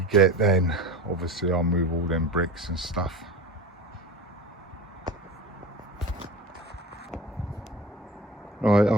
get then. Obviously I'll move all them bricks and stuff. Right,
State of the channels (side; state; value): both; normal; correlation 0.33